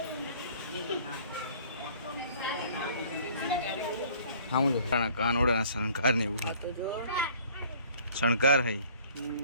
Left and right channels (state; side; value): inverted; both; correlation -0.54